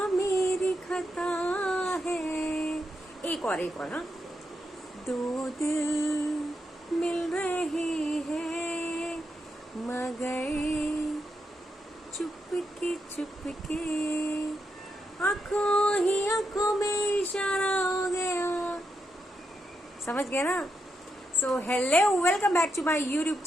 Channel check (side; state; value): both; normal; correlation 0.83